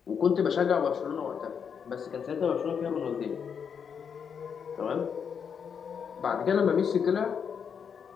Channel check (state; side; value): quieter; right; 7.0 dB